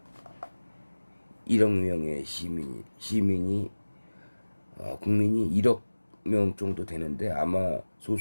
1억 명의 국민이 1억 명 정도 되는데 아마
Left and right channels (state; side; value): inverted; both; correlation -1.00